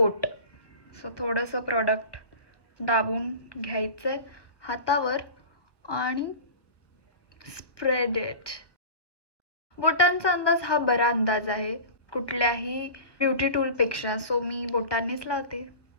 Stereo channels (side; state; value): right; late; 1.4 ms